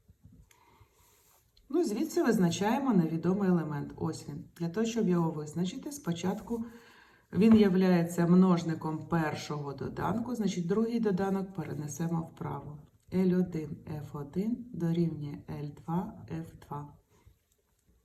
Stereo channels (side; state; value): both; identical; correlation 1.00